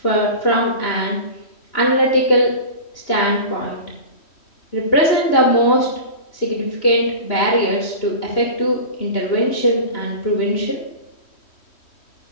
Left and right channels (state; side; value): late; right; 3.1 ms